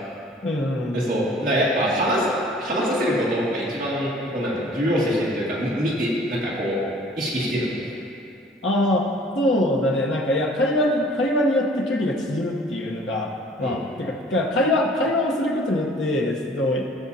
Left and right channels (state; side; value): normal; both; correlation 0.52